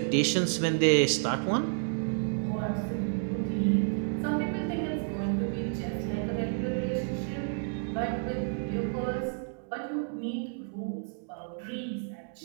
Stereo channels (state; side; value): silent; left; digital silence